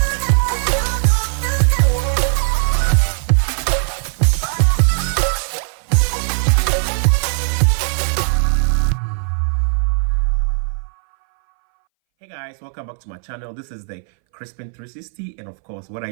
Hey guys, welcome back to my channel. This is the Crispin 360, and of course, what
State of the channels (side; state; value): left; silent; 63 dB below the other